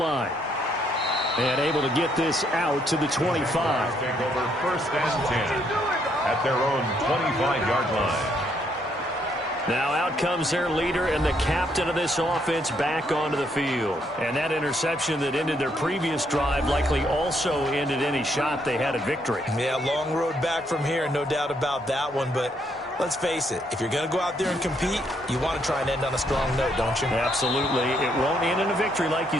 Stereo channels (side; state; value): both; normal; correlation 0.72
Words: And able to get this out to the 25. Take over 1st and 10 at their own 25-yard line. Now out comes their leader and the captain of this offense back onto the field. And that interception that ended their previous drive likely also ended any shot they had at victory. Yeah, long road back from here, no doubt about that one. But let's face it, if you're going to go out there and compete, you want to try and end on a strong note, don't you? Absolutely. It won't end in a victory like you